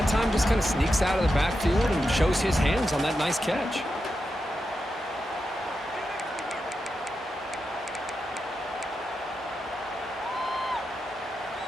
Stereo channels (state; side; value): normal; both; correlation 0.88